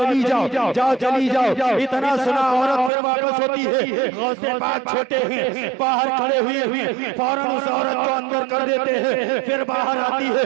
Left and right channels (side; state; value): left; drops out; at 2.9 s